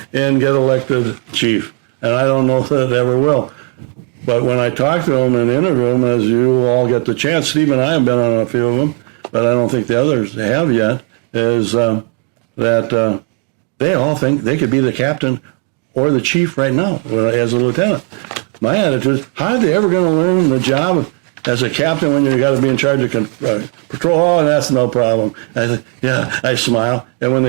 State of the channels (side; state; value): left; quieter; 35.1 dB